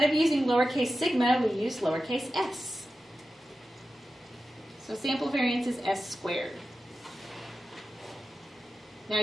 of using lowercase sigma, we use lowercase s. So sample variance is s squared. Now,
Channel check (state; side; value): normal; both; correlation 0.92